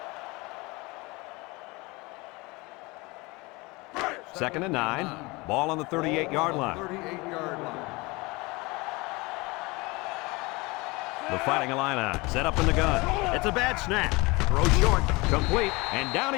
Second and 9. Ball on the 38-yard line. The Fighting Illini set up in the gun. It's a bad snap. Throw short, complete, and down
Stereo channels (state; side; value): quieter; right; 24.5 dB